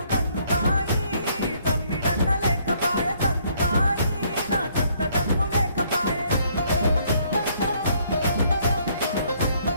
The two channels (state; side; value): inverted; both; correlation -0.66